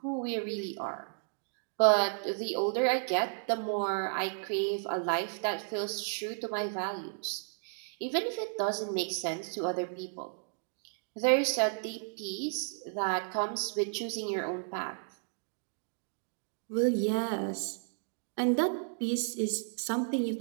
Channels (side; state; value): left; silent; digital silence